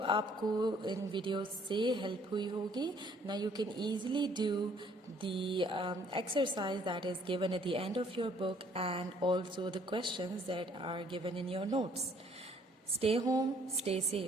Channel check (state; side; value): normal; both; correlation 0.61